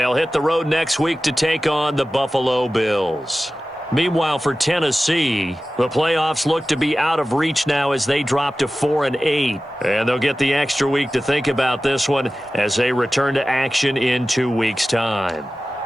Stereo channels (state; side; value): normal; both; correlation 0.96